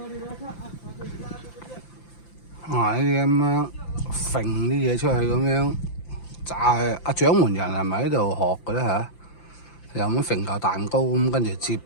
啊！呢啲咁樣揈啲嘢出去咁樣炸，阿掌門人係咪喺度學嘅咧嚇？又咁揈嚿蛋糕咁，跟住接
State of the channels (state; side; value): late; right; 5.9 ms